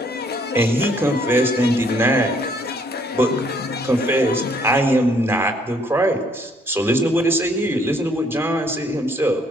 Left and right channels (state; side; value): normal; both; correlation 0.66